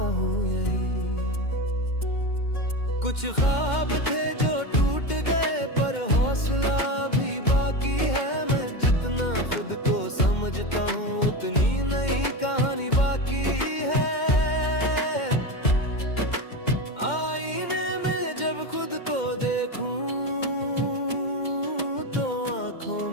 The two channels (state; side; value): late; right; 2.1 ms